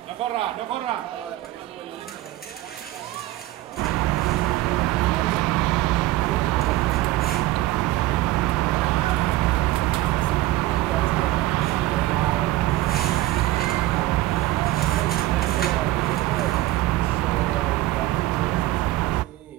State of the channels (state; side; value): quieter; left; 16.4 dB